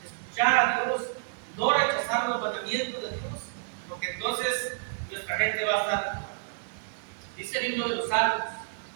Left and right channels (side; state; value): left; silent; digital silence